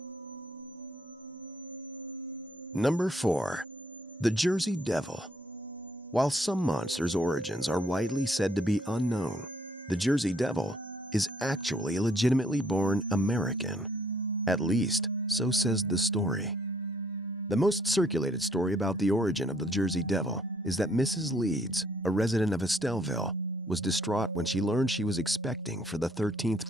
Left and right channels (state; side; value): normal; both; correlation 0.66